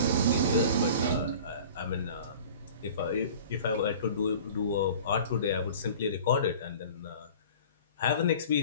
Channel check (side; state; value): both; inverted; correlation -0.43